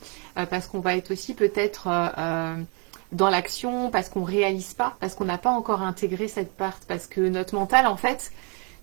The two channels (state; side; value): quieter; left; 35.2 dB